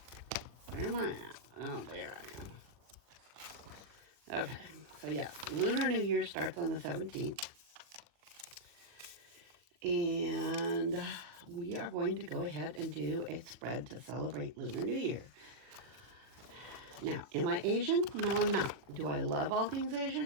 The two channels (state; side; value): late; left; 40 ms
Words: Where am I at? Oh, there I am. Okay, so yes, Lunar New Year starts on the 17th. And we are going to go ahead and do a spread to celebrate Lunar New Year. Now, am I Asian? No, I'm not. Do I love all things